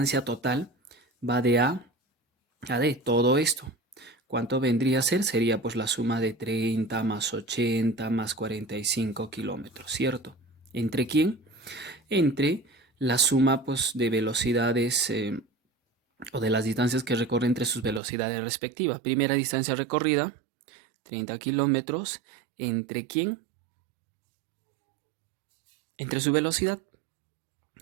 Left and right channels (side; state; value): left; drops out; at 18.0 s